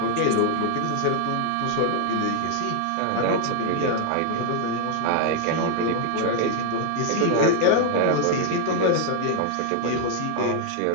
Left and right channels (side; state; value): both; different; correlation 0.00